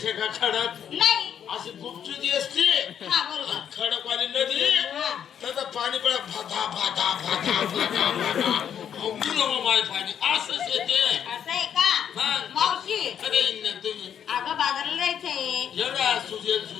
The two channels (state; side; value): quieter; right; 8.8 dB